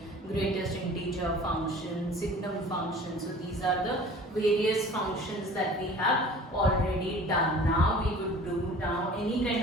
greatest integer function, signum function. So these are the various functions that we have already done. Now we would do any kind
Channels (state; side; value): normal; both; correlation 0.45